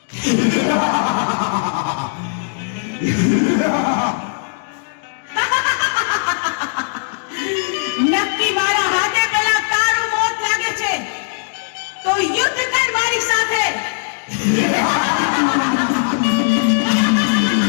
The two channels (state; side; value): silent; right; digital silence